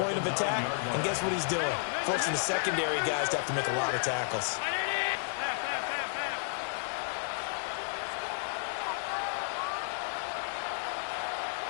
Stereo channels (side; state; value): right; silent; digital silence